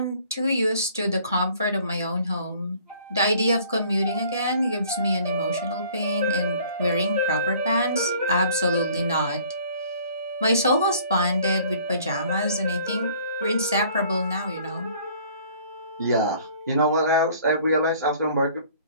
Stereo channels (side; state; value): both; inverted; correlation -0.55